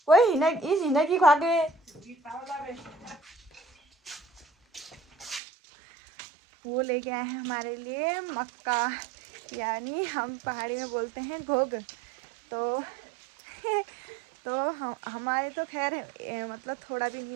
वही हिना की खा के वो लेके आए हैं हमारे लिए मक्का, यानी हम पहाड़ी में बोलते हैं घोग। तो तो हमारे तो खैर मतलब थोड़ा भी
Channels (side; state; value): left; drops out; at 5.4 s